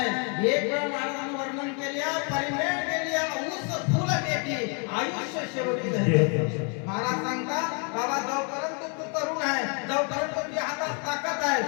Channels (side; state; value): right; quieter; 37.8 dB